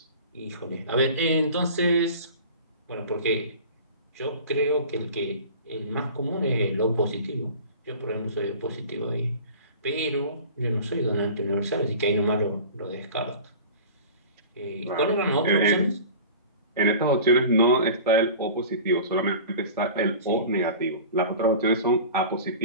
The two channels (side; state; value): both; inverted; correlation -0.39